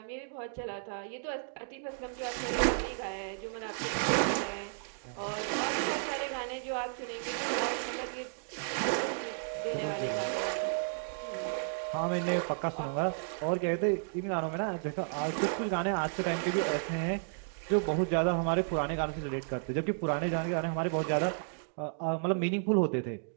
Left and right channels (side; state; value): left; silent; digital silence